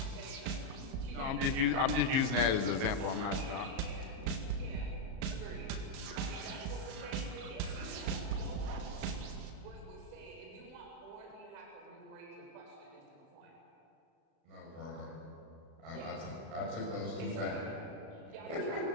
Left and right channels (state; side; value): late; left; 36 ms